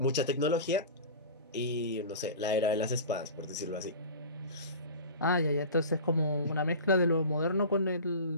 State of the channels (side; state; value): both; inverted; correlation -0.34